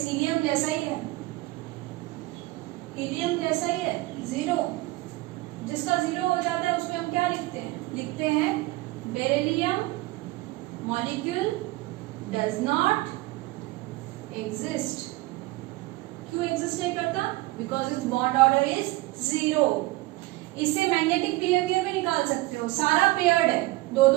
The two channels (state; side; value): quieter; left; 20.3 dB